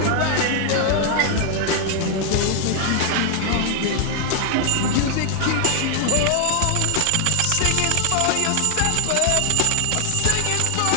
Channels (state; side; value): different; both; correlation 0.00